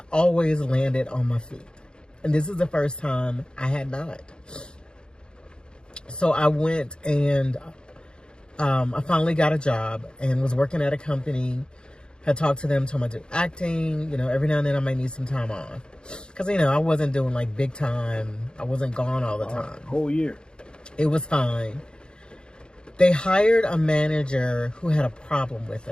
always landed on my feet. And this is the first time I had not. So I went and I finally got a job and was working at a company. Had talked to them, told them I do acting. You know, every now and then I might need some time off. Because, you know, I wasn't doing like big time. I wasn't gone all the time. Whole year. It was fine. They hired a manager who had a problem with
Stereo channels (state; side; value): late; right; 0.050 ms